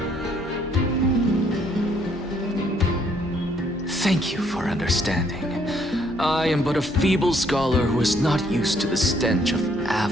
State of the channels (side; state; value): both; normal; correlation 0.67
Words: Thank you for understanding. I am but a feeble scholar who is not used to the stench of